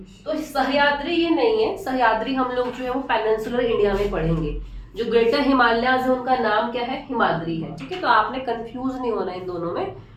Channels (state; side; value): identical; both; correlation 1.00